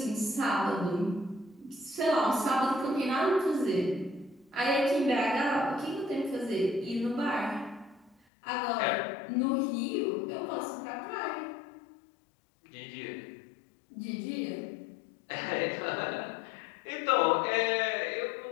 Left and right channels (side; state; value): right; drops out; at 8.2 s